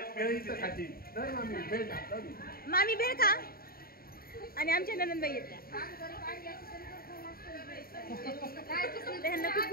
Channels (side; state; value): right; late; 0.43 ms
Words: मामी भेळ खा. आणि आमच्या ननंदबाई येत्या. त्यांना खूप